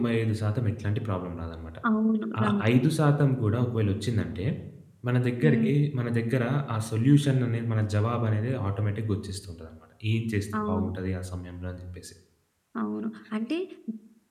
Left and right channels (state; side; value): identical; both; correlation 1.00